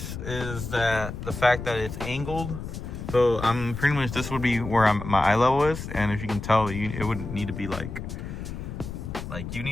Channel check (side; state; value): left; noise; rumble, 8 dB below the sound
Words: is that the fact that it's angled. So I'm pretty much, this would be where my eye level is, and if you can tell, it would need to be like you